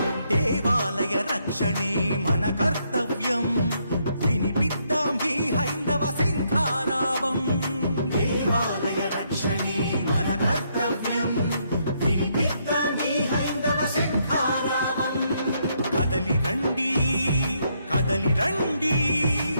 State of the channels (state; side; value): inverted; both; correlation -0.74